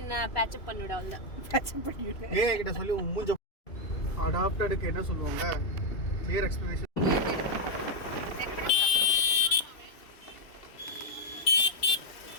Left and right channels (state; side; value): late; right; 2.7 ms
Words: பேட்சப் பண்ணிவிட அவ்வளோ பேட்சப் பண்ணிவிடு. ஏன் கிட்ட சொல்லி மூஞ்ச அடாப்டடுக்கு என்ன சொல்லுவாங்க, கிளியர் எக்ஸ்பிளனேஷன்.